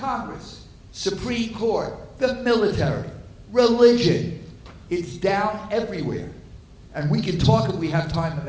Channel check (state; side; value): identical; both; correlation 1.00